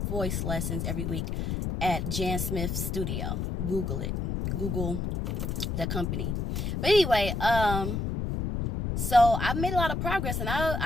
voice lessons every week at Jan Smith Studio. Google it. Google the company. But anyway, so I've made a lot of progress, and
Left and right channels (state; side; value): noise; left; rumble, 1 dB below the sound